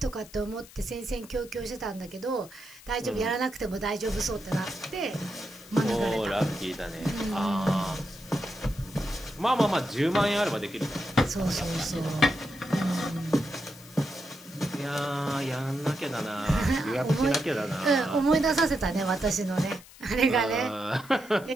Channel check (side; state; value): left; noise; hiss, 21 dB below the sound